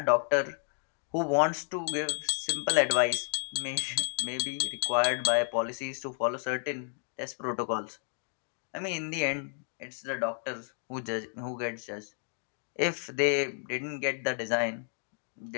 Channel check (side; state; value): right; silent; 57 dB below the other